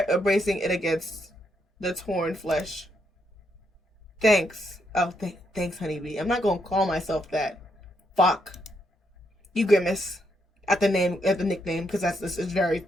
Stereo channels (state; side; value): normal; both; correlation 0.78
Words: bracing it against the torn flesh. Thanks. Oh, thanks, honeybee. I'm not gonna call myself that. Fuck. You grimace at the nickname, because it's very.